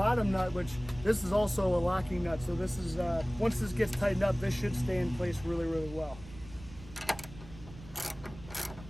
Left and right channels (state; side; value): noise; right; rumble, 17 dB below the sound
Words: nut, which this is also a locking nut. So this is, once this gets tightened up, this should stay in place really, really well.